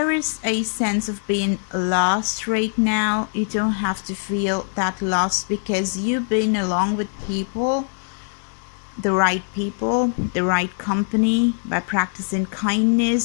is a sense of being lost right now, you don't have to feel that lost, because you've been along with people, the right people, the right company, by practicing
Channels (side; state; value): right; silent; 62 dB below the other